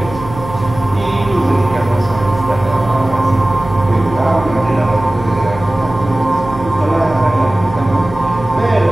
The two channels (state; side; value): noise; right; hum, 13 dB below the sound